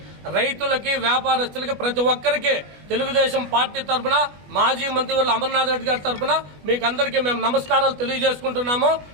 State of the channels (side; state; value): left; late; 20 ms